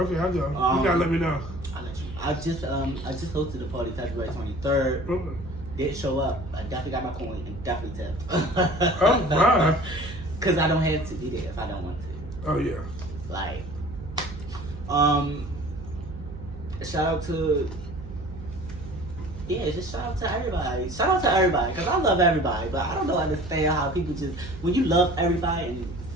I'll go. You gotta let me know. I'll let you. I just hosted a party February 23rd. Okay. Didn't show up. I definitely got my coin and definitely tipped. Oh my! Cause I don't have to be there if I don't want to. Oh yeah. Like, shout out to just shout out to everybody. Shout out to everybody, cause I love everybody, but I don't understand how people just when you love everybody and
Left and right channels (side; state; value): right; noise; hum, 12 dB below the sound